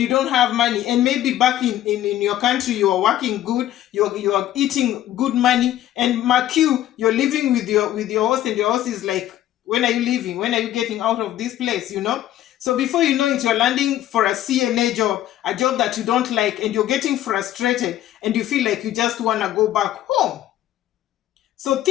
don't have money, and maybe back in your country you are working good, you are eating good money, and mark you're living with your host, and your host is like, when are you leaving, when are you getting out of this place, So before you know it, you're landing for a CNA job, a job that you don't like, and you're getting frustrated and you feel like you just want to go back home. So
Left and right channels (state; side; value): quieter; right; 13.0 dB